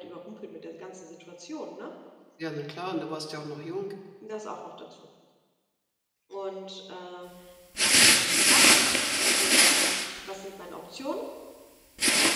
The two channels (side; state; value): both; identical; correlation 1.00